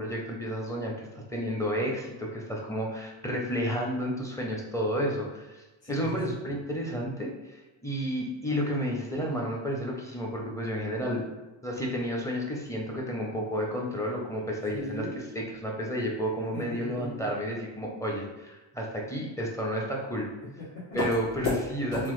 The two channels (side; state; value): both; normal; correlation 0.28